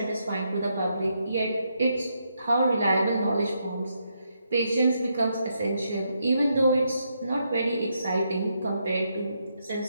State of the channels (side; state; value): both; inverted; correlation -0.79